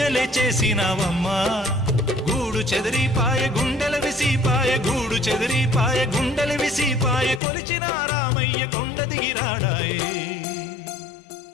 చేసినావమ్మా గూడు చెదిరిపాయ గుండెల విసిపాయ గూడు చెదిరిపాయ గుండెల విసిపాయ కొలిచిన రామయ్య కొండ దిగిరాడాయే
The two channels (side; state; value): right; drops out; at 7.4 s